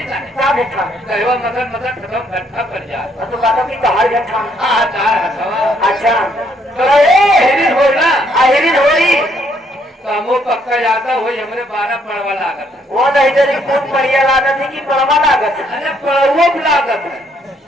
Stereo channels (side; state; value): both; normal; correlation 0.69